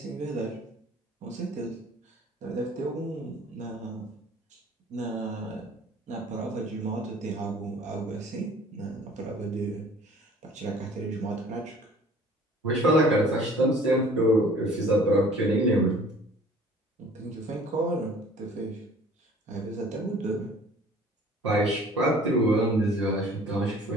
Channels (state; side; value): normal; both; correlation 0.50